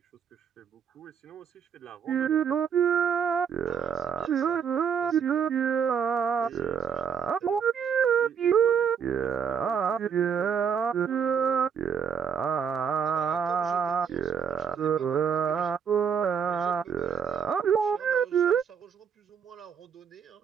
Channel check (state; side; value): quieter; left; 7.2 dB